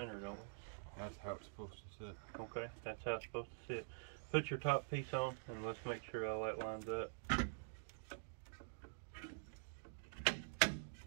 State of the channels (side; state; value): left; silent; digital silence